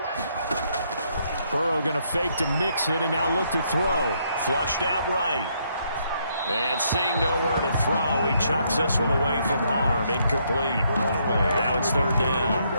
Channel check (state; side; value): inverted; both; correlation -0.73